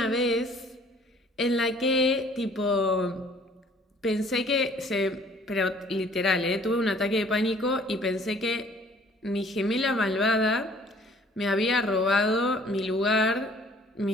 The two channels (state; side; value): normal; both; correlation 0.56